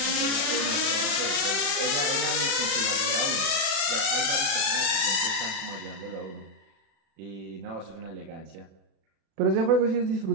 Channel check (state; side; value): late; left; 36 ms